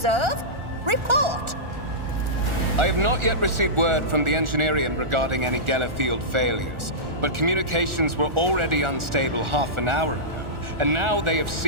Report! I have not yet received word from the Engineering regarding any Geller field failures, but communications were already unstable half an hour ago, and now they have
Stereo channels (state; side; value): late; left; 1.4 ms